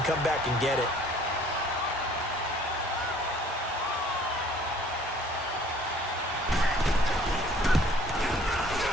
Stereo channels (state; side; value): normal; both; correlation 0.55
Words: come back and get it.